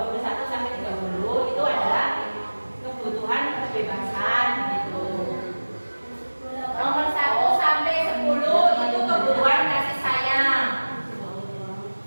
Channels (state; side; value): inverted; both; correlation -1.00